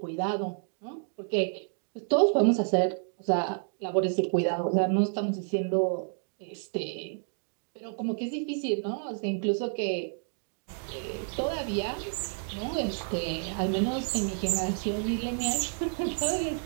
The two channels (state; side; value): silent; left; 58 dB below the other